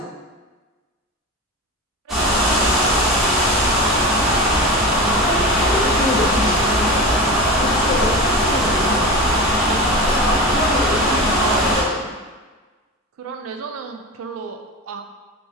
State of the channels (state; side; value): normal; both; correlation 0.26